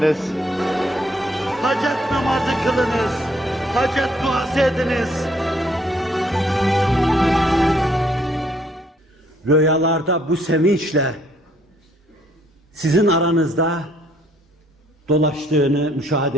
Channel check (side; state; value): both; normal; correlation 0.66